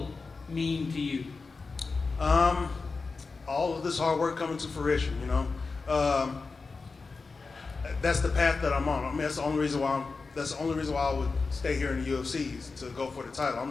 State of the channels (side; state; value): right; quieter; 4.3 dB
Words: mean to you? All of this hard work coming to fruition, you know. That's the path that I'm on. I mean, that's the only reason why I would stay here in the UFC is to go for the title.